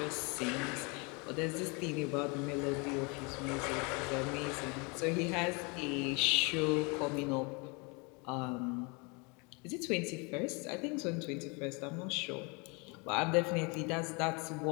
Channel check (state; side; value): quieter; right; 30.7 dB